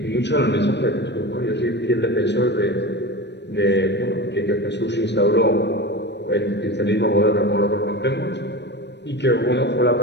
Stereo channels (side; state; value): right; late; 0.50 ms